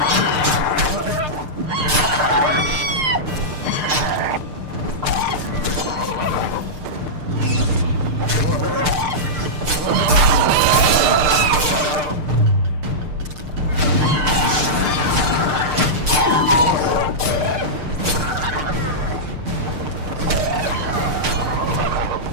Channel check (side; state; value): left; late; 6.6 ms